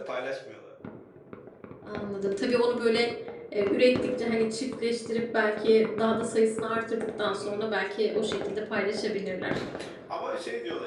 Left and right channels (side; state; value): both; identical; correlation 1.00